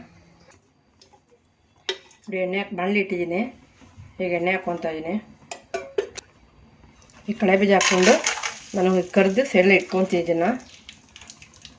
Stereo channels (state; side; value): identical; both; correlation 1.00